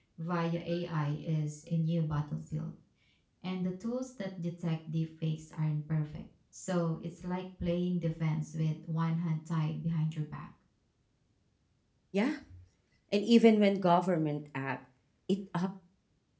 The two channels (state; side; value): identical; both; correlation 1.00